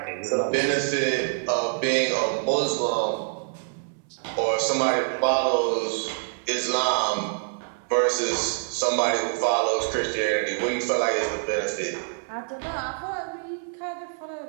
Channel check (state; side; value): silent; left; 61 dB below the other